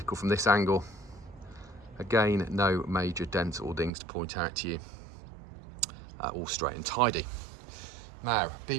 from this angle, again no major dents or dings to point out to you. All straight and tidy. Now,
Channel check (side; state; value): left; drops out; at 3.9 s